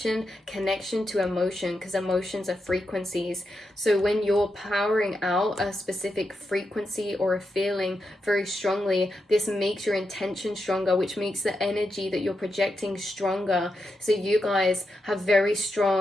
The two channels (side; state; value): both; normal; correlation 0.86